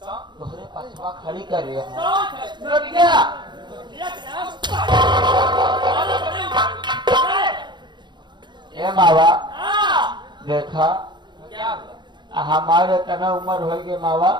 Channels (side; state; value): left; late; 0.22 ms